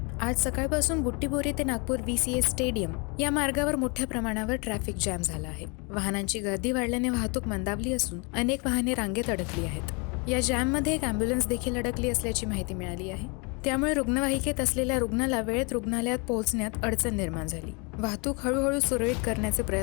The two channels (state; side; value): quieter; right; 31.9 dB